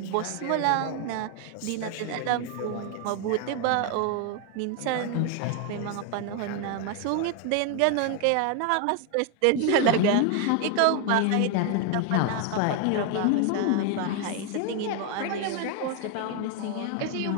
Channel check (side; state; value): both; different; correlation 0.01